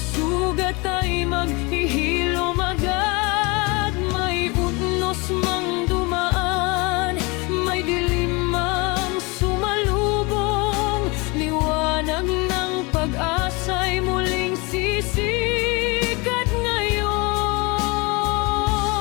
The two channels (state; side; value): quieter; right; 27.1 dB